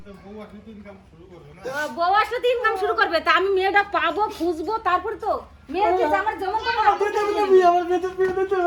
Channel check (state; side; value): identical; both; correlation 1.00